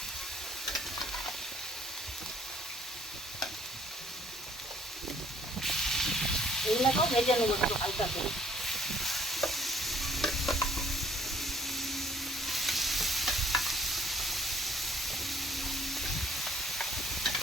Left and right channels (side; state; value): both; normal; correlation 0.60